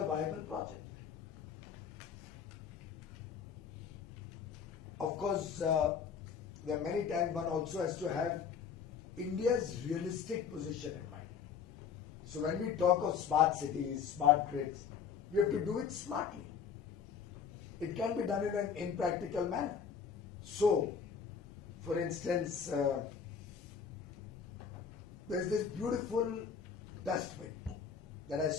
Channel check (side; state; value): right; quieter; 6.8 dB